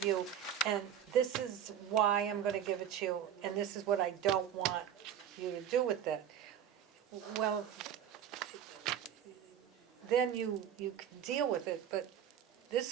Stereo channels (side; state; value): left; quieter; 9.4 dB